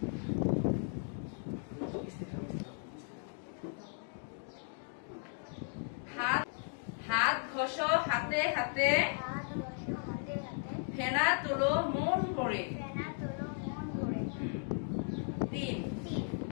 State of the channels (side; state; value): right; silent; 54 dB below the other